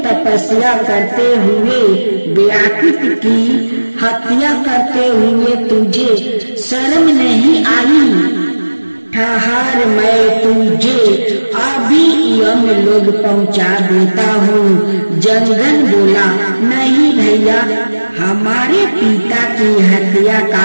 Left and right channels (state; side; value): inverted; both; correlation -1.00